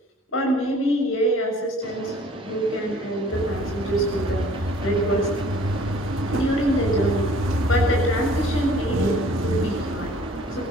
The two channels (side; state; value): both; normal; correlation 0.54